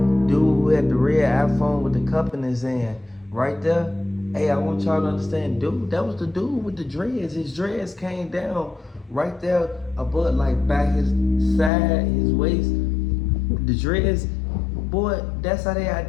dude who had the red iPhone with the cup in his hand, right there, hey, I want y'all to understand, dude, that was the dude with the dreads. His dreads came down right there above, like by his side, his waist, the dreads. Boy, that's how they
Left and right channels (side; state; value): right; drops out; at 11.7 s